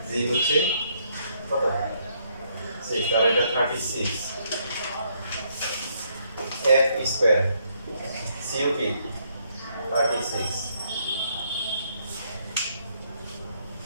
g হচ্ছে কত 6 তাহলে এটা 36 f স্কয়ার cup 36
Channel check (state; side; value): inverted; both; correlation -0.72